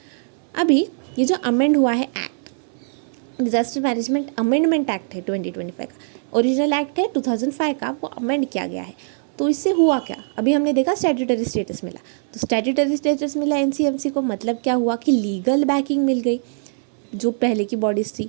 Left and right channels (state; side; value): silent; left; 59 dB below the other